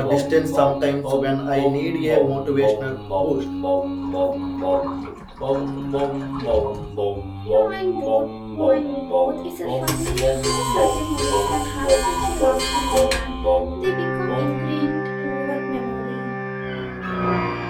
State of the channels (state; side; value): identical; both; correlation 1.00